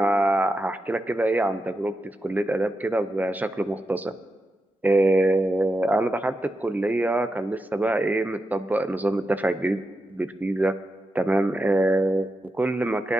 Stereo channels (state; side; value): normal; both; correlation 0.88